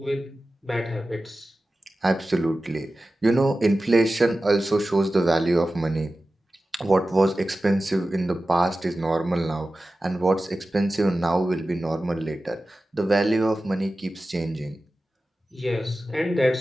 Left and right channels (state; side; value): normal; both; correlation 0.95